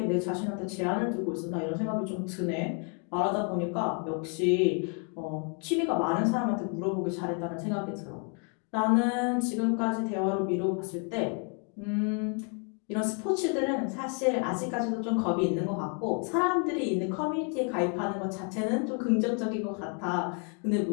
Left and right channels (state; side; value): quieter; right; 39.9 dB